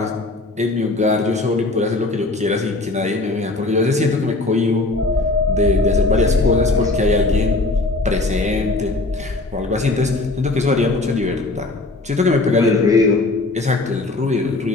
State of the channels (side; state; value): right; quieter; 3.1 dB